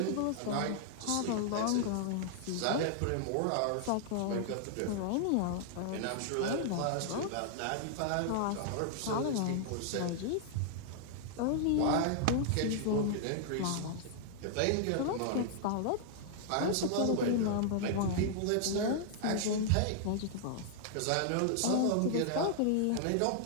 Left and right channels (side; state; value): both; different; correlation -0.01